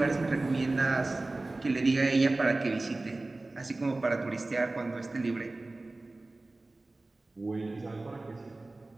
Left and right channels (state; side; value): quieter; left; 3.0 dB